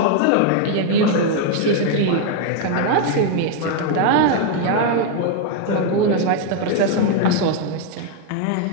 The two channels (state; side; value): different; both; correlation 0.00